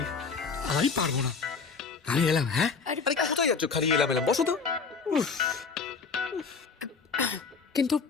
আমি পারবো না। আমি এলাম। হ্যাঁ, আরে কোথায় যাচ্ছ? খালি এলাম এলাম, বসো তো। কিন্তু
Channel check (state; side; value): quieter; right; 5.1 dB